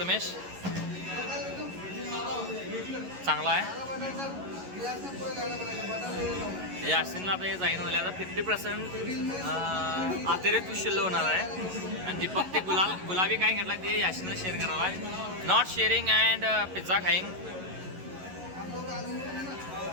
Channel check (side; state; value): left; late; 11 ms